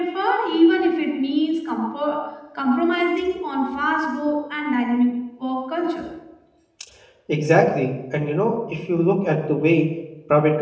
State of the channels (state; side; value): identical; both; correlation 1.00